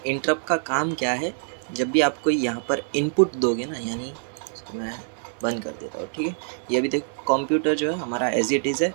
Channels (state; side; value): silent; left; 62 dB below the other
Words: इंटरप्ट का काम क्या है? जब भी आप कोई यहाँ पर इनपुट दोगे ना, यानी इसको मैं बंद कर देता हूँ। ठीक है, ये भी देखो कंप्यूटर जो है हमारा एज इट इज़ है।